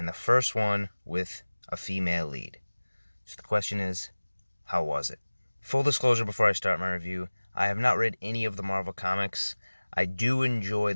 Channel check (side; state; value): both; inverted; correlation -1.00